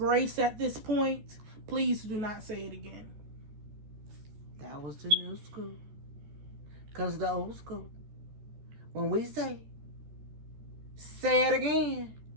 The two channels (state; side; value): late; left; 14 ms